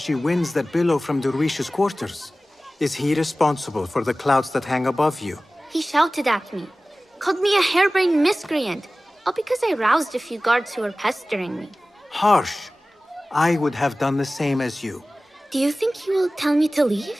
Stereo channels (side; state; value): both; normal; correlation 0.97